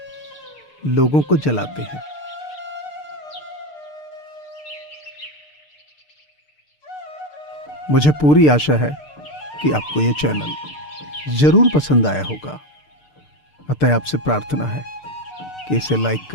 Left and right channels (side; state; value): right; late; 6.7 ms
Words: लोगों को जलाते हैं। मुझे पूरी आशा है कि आपको ये चैनल जरूर पसंद आया होगा। अतः आपसे प्रार्थना है कि इसे लाइक